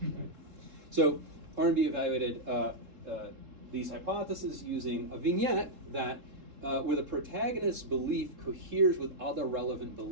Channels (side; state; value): left; late; 3.7 ms